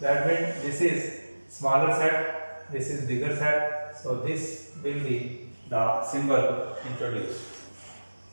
That means this is smaller set, this is bigger set. So this will be the symbol introduced.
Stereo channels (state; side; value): inverted; both; correlation -1.00